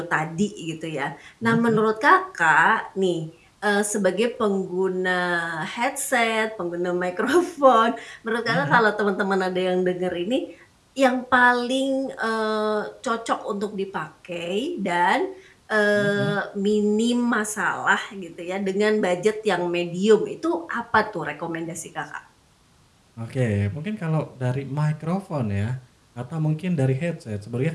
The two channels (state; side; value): identical; both; correlation 1.00